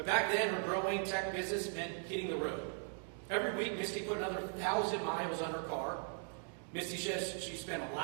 back then, her growing tech business meant hitting the road. Every week, Misty put another 1,000 miles on her car. Misty says she spent a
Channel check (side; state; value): left; silent; 52 dB below the other